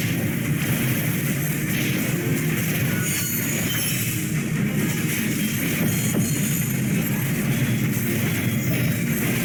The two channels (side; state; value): both; identical; correlation 1.00